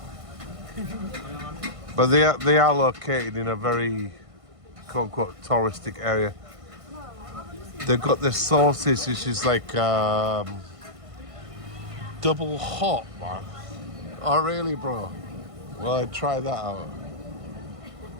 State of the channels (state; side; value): late; left; 1.5 ms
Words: But they are located in a very quote unquote touristic area. They've got the sauces, which is like double hot, man. Oh really, bro? Well, I'd try that out.